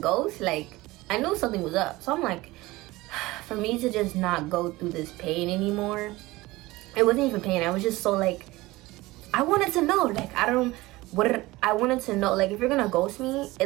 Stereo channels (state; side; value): quieter; left; 19.8 dB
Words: ghost? Like, I knew something was up. So I'm like, for me to just not go through this pain anymore, it wasn't even pain. I was just so like, I wanted to know. Like, I wanted to know, like, if you're gonna ghost me,